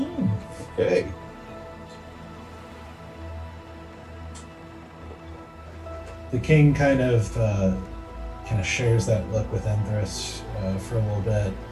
Okay. The king kind of shares that look with Empress for a little bit.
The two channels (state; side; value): identical; both; correlation 1.00